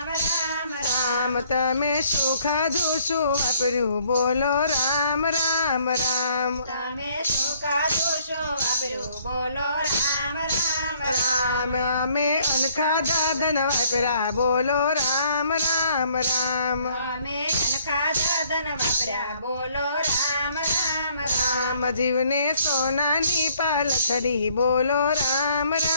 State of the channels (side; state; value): both; inverted; correlation -0.63